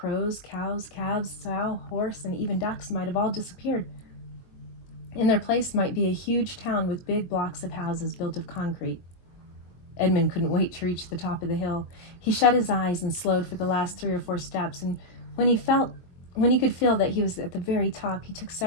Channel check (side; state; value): right; late; 22 ms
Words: cows, calves, sow, horse, and even ducks might have all disappeared. In their place might be a huge town with big blocks of houses built of concrete. Edmund couldn't wait to reach the top of the hill. He shut his eyes and slowed for the last 3 or 4 steps, and when he could feel that he was at the very top, he took